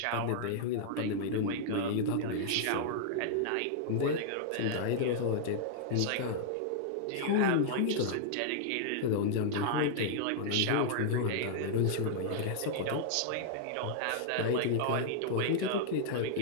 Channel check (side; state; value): both; different; correlation -0.01